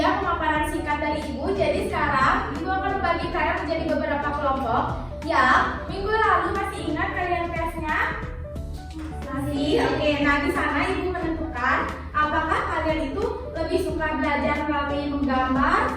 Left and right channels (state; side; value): identical; both; correlation 1.00